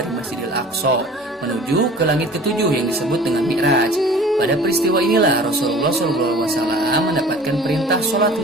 Masjidil Aqsa menuju ke langit ketujuh yang disebut dengan Mi'raj. Pada peristiwa inilah Rasulullah SAW mendapatkan perintah sholat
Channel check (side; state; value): both; normal; correlation 0.44